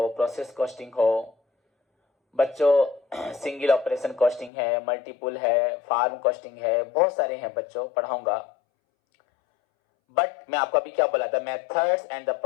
प्रोसेस कॉस्टिंग हो बच्चों, सिंगल ऑपरेशन कॉस्टिंग है, मल्टीपुल है, फार्म कॉस्टिंग है, बहुत सारे हैं बच्चों, पढ़ाऊंगा। बट मैं आपको अभी क्या बोला था, methods and the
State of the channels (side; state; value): right; drops out; at 4.5 s